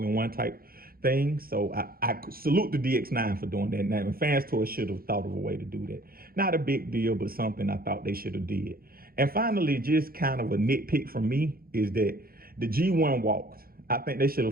type thing. So I salute the DX9 for doing that. Now, Fans Toys should have thought of a way to do that. Not a big deal, but something I thought they should have did. And finally, just kind of a nitpick from me is that the G1 walked. I think they should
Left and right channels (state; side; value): late; left; 0.43 ms